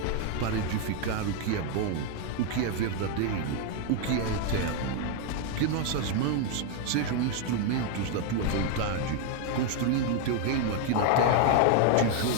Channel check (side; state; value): both; different; correlation 0.01